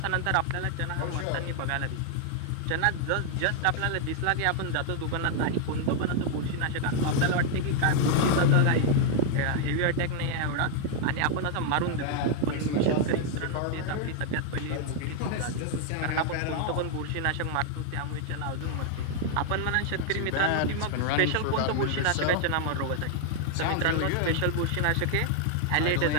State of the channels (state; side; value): different; both; correlation 0.00